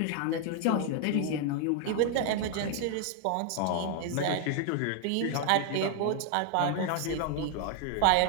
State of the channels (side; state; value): both; different; correlation 0.00